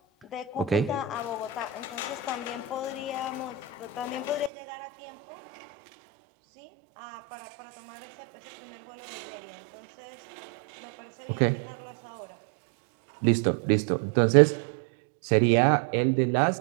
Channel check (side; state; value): left; drops out; at 4.5 s